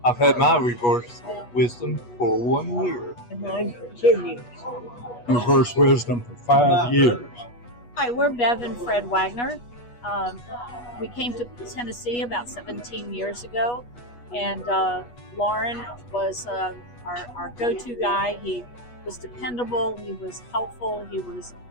I've had my reverse wisdom for 1 year. Mine for 10 years. Reverse wisdom for 5 years. Hi, we're Bev and Fred Wagner. We came to Tennessee about 17 years ago, and Lauren was our go-to guy. He was dependable. He was helpful. He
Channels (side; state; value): right; late; 8.3 ms